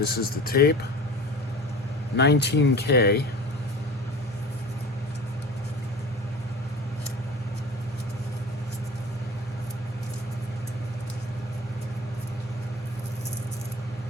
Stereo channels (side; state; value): both; normal; correlation 0.38